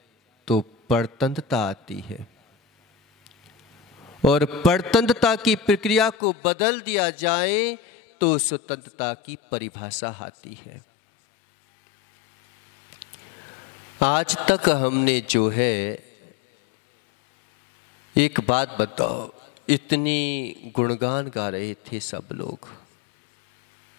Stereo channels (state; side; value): drops out; right; at 6.2 s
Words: तो परतंत्रता आती है, और परतंत्रता की प्रक्रिया को बदल दिया जाए तो स्वतंत्रता की परिभाषा आती है। आज तक हमने जो है, एक बात बताओ, इतनी गुणगान गा रहे थे सब लोग